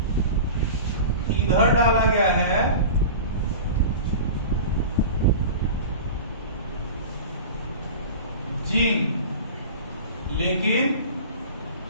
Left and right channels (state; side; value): inverted; both; correlation -0.34